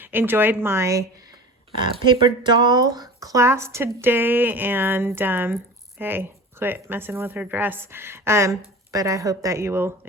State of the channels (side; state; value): both; normal; correlation 0.36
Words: enjoyed my paper doll class today. And hey, quit messing with her dress. But I hope that you will